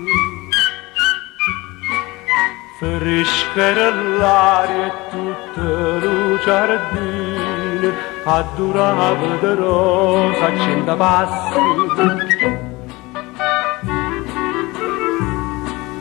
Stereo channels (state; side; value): quieter; right; 22.2 dB